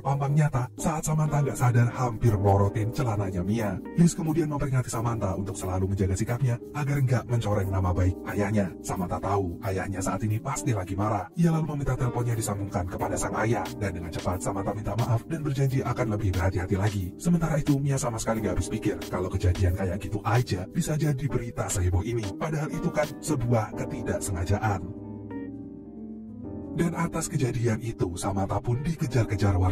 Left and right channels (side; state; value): both; identical; correlation 1.00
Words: nyata saat Samantha nggak sadar hampir melorotin celananya Mia. Liz kemudian memperingati Samantha untuk selalu menjaga sikapnya agar nggak mencoreng nama baik ayahnya. Samantha tahu ayahnya saat ini pasti lagi marah. Ia lalu meminta teleponnya disambungkan kepada sang ayah dan dengan cepat Samantha minta maaf dan berjanji akan lebih berhati-hati lagi. Sementara itu Mia sama sekali nggak habis pikir kalau kejadian kayak gitu aja bisa jadi berita seheboh ini. Padahal itu kan sebuah ketidaksengajaan. Dan atas kejadian itu, Samantha pun dikejar-kejar